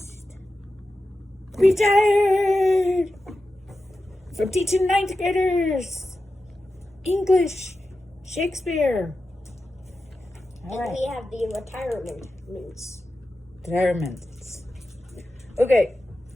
retired from teaching 9th graders English, Shakespeare. All right. We have the retirements. Retirements. Okay,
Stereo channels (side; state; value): both; normal; correlation 0.92